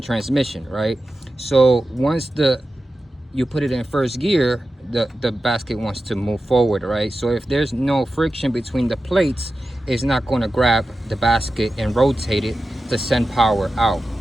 transmission, right? So once you put it in first gear, the basket wants to move forward, right? So if there's no friction between the plates, it's not going to grab the basket and rotate it to send power out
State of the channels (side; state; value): both; normal; correlation 0.93